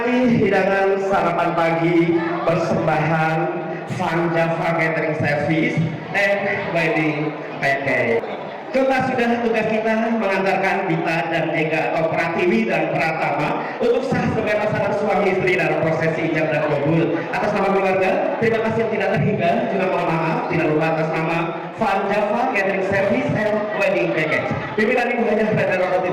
hidangan sarapan pagi persembahan Van Java Catering Service and Wedding Package. Tuntas sudah tugas kita mengantarkan Dita dan Ega atau Pratiwi dan Pratama untuk sah sebagai pasangan suami istri dalam prosesi ijab dan kabul. Atas nama keluarga, terima kasih yang tidak terhingga, juga mohon maaf tidak lupa atas nama Van Java Catering Service and Wedding Package. Pimpinan Ibu Hajah Radha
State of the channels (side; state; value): both; identical; correlation 1.00